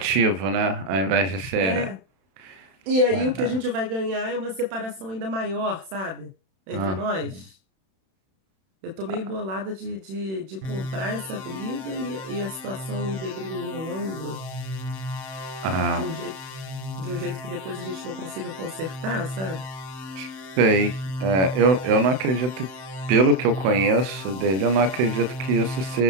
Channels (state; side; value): late; left; 31 ms